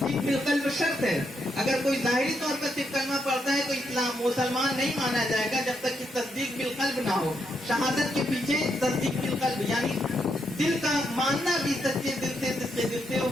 بالقلب شرط ہے. اگر کوئی ظاہری طور پر صرف کلمہ پڑھتا ہے تو اسلام مسلمان نہیں مانا جائے گا جب تک کہ تصدیق بالقلب نہ ہو. شہادت کے پیچھے تصدیق بالقلب یعنی دل کا ماننا بھی سچے دل سے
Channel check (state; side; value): normal; both; correlation 0.79